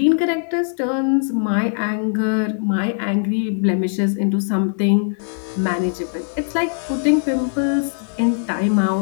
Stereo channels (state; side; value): silent; right; digital silence